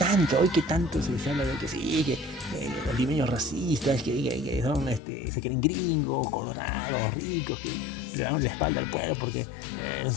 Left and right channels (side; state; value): right; drops out; at 5.0 s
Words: tanto se habla de que sí, que los limeños racistas, que son, se creen gringos, colorados, ricos, que le dan la espalda al pueblo porque